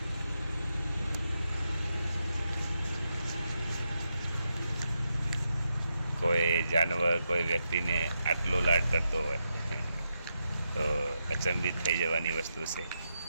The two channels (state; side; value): inverted; both; correlation -0.85